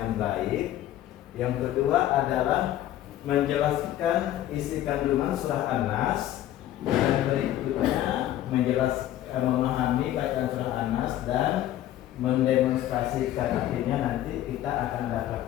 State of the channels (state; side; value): quieter; right; 13.1 dB